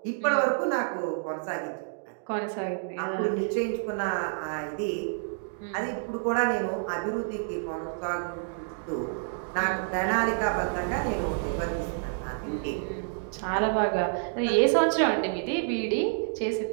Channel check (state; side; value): silent; left; digital silence